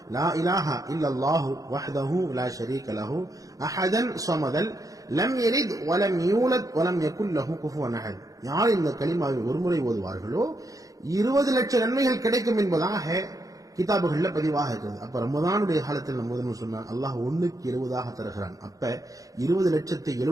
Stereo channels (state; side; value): late; left; 0.17 ms